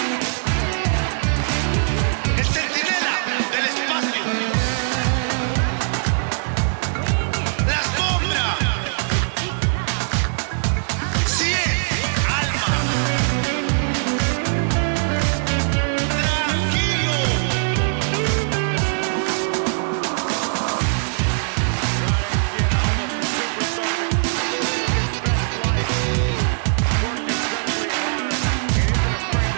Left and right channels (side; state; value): left; silent; digital silence